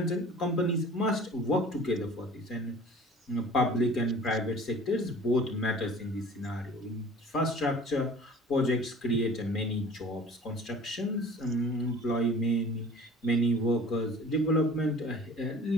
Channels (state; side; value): normal; both; correlation 0.45